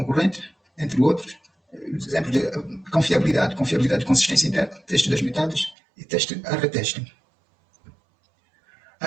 entre outros. Exemplos de confiabilidade de consistência interna, teste das metades e teste a reteste.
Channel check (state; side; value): drops out; left; at 5.8 s